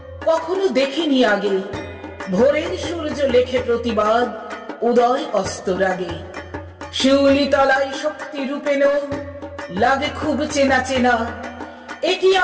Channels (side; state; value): both; identical; correlation 1.00